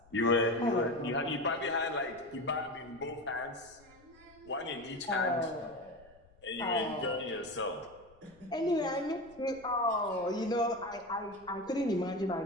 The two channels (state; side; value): noise; left; rumble, 27 dB below the sound